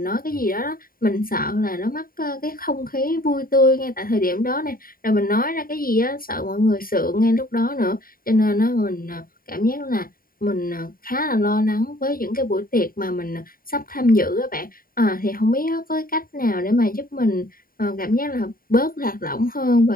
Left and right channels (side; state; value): right; late; 0.42 ms